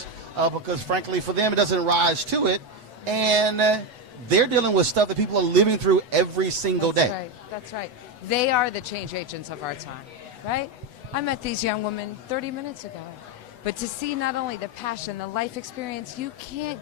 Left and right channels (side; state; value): left; late; 8.1 ms